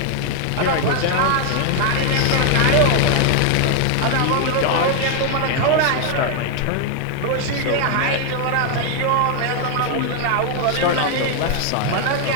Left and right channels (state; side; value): different; both; correlation 0.01